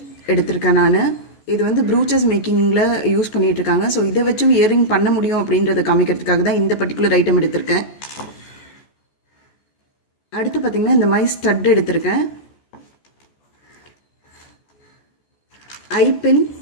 எடுத்திருக்கேன் நான். இது ப்ரூச்சஸ் மேக்கிங்கில் யூஸ் பண்ணிகிட்ருக்காங்க. ஸோ இதை வச்சும் இயரிங் பண்ண முடியும் அப்படின்றத காமிக்கிறதுக்காக தான் இந்த பர்டிகுலர் ஐட்டம் எடுத்திருக்கேன். அடுத்து பார்த்தீங்கன்னா, இந்த மாதிரி ஸ்டட் எடுத்திருக்கேன். ஐபின்,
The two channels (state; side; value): late; right; 14 ms